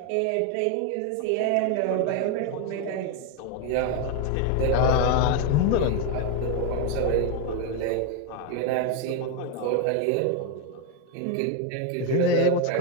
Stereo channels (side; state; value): both; different; correlation 0.02